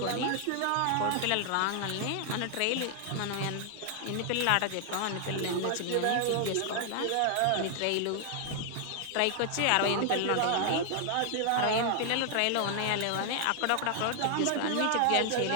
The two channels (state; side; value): different; both; correlation 0.00